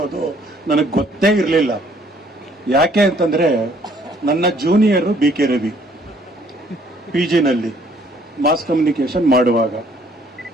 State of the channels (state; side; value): normal; both; correlation 0.62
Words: ನನಗೆ ಗೊತ್ತೇ ಇರಲಿಲ್ಲ. ಯಾಕೆ ಅಂತಂದ್ರೆ ನನ್ನ junior B K Ravi PG ನಲ್ಲಿ ಮಾಸ್ ಕಮ್ಯುನಿಕೇಶನ್ ಮಾಡುವಾಗ.